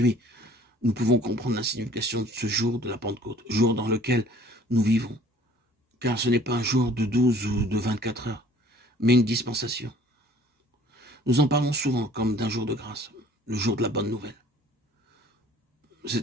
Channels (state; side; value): normal; both; correlation 0.53